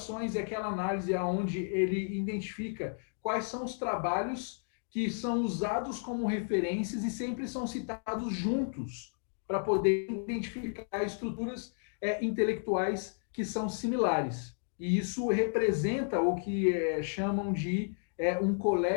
é aquela análise onde ele identifica quais são os trabalhos que são usados como referências e sempre são citados juntos, para poder identificar estruturas intelectuais que são similares. E isso representa o que chamam de um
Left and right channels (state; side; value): silent; right; digital silence